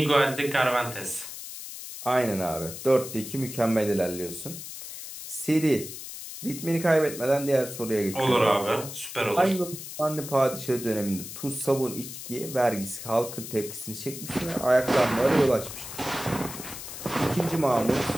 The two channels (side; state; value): left; noise; hiss, 10 dB below the sound